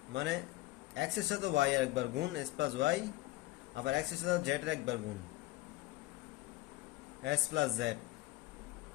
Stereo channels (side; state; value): right; quieter; 17.7 dB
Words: মানে এক্স এর সাথে ওয়াই আর একবার গুণ এস প্লাস ওয়াই, আবার এক্স এর সাথে জেড এর একবার গুণ এস প্লাস জেড।